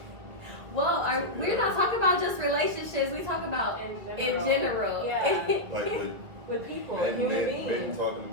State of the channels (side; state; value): left; late; 2.2 ms